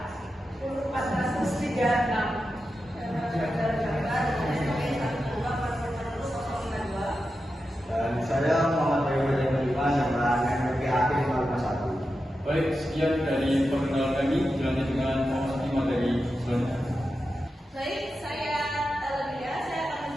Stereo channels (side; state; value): both; normal; correlation 0.90